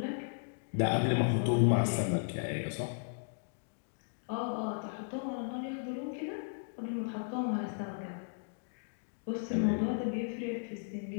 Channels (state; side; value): silent; right; digital silence